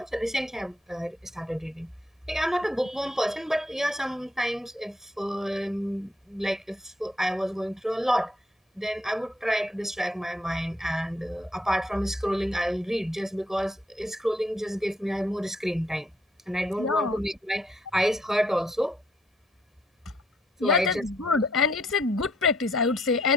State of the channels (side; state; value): both; normal; correlation 0.70